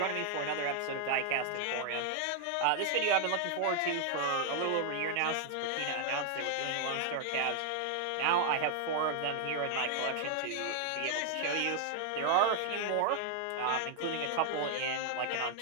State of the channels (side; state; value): both; different; correlation 0.00